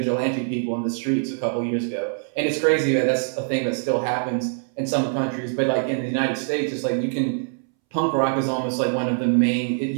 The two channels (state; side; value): silent; left; 63 dB below the other